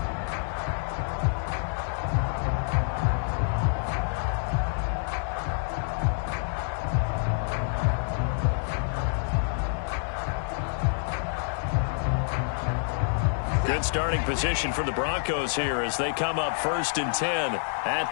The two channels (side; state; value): right; silent; digital silence